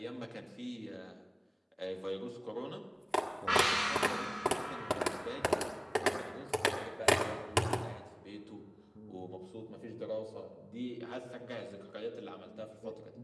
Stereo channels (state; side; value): identical; both; correlation 1.00